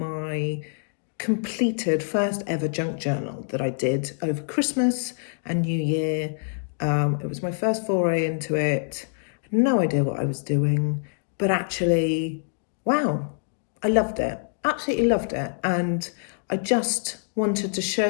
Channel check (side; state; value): right; silent; digital silence